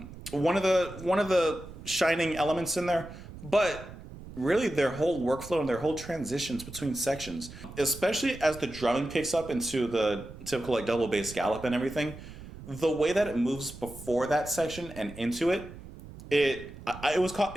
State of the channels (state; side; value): noise; right; rumble, 15 dB below the sound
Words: of the shining elements in there. But really, their whole workflow and their whole transitions between sections, especially as the drumming picks up into the typical like double bass gallop and everything, the way that it moves before that section and into it, it